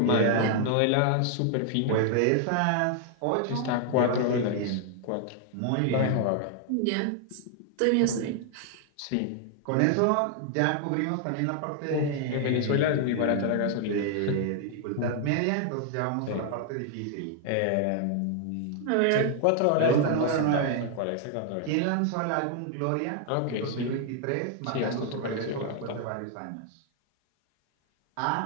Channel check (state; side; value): different; both; correlation 0.00